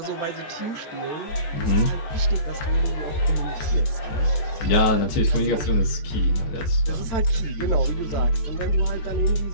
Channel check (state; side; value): late; right; 15 ms